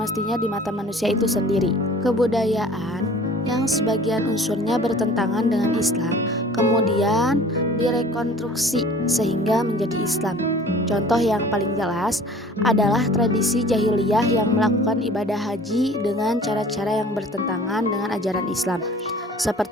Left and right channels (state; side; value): normal; both; correlation 0.47